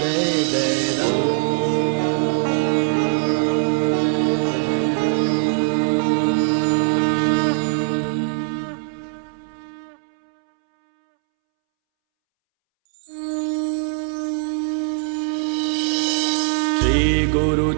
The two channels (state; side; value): silent; left; 65 dB below the other